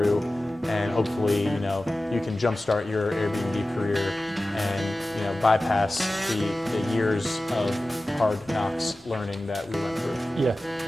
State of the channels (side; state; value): both; normal; correlation 0.96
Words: and hopefully, you can jumpstart your Airbnb career and, bypass the years of hard knocks learning that we went through. Yeah,